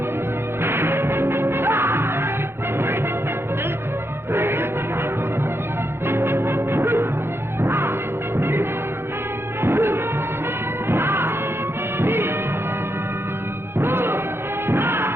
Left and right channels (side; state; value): left; late; 0.11 ms